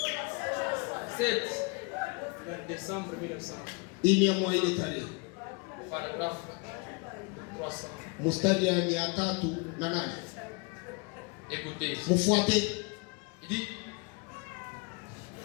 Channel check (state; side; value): quieter; right; 31.0 dB